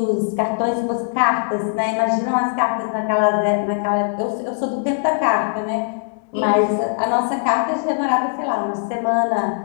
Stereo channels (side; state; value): right; silent; digital silence